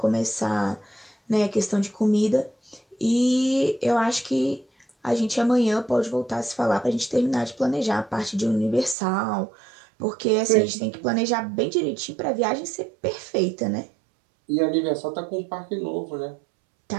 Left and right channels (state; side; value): drops out; left; at 9.0 s